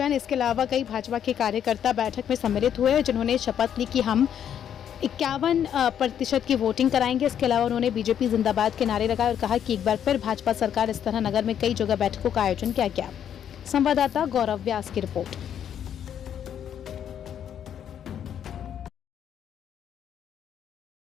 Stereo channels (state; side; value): quieter; right; 9.3 dB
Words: इसके अलावा कई भाजपा के कार्यकर्ता बैठक में सम्मिलित हुए, जिन्होंने शपथ ली कि हम 51% की वोटिंग कराएंगे। इसके अलावा उन्होंने बीजेपी जिंदाबाद के नारे लगाए और कहा कि एक बार फिर भाजपा सरकार इस तरह नगर में कई जगह बैठकों का आयोजन किया गया। संवाददाता गौरव व्यास की रिपोर्ट।